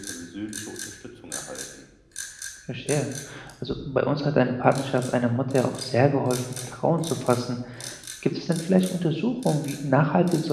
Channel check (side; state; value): both; identical; correlation 1.00